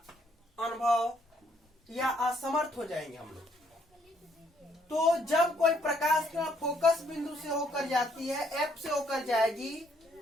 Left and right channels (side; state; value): both; normal; correlation 0.68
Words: अनुभव या असमर्थ हो जाएंगे हम लोग। तो जब कोई प्रकाश किरण फोकस बिंदु से होकर जाती है, एफ से होकर जाएगी,